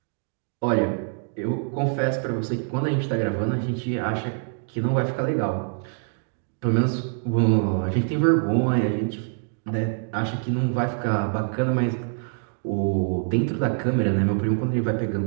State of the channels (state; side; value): silent; left; 58 dB below the other